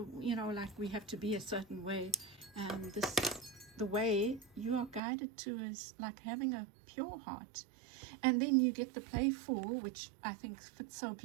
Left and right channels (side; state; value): left; drops out; at 5.0 s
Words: you know, like we have to be a certain way. And the way you are guided to is like having a pure heart. And then you get the playful, which I think fits so